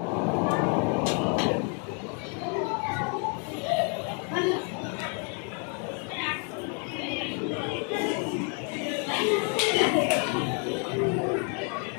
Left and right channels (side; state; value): right; quieter; 39.4 dB